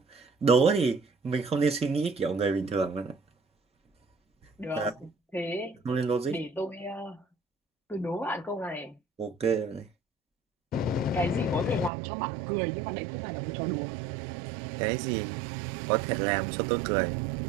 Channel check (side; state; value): left; drops out; at 11.9 s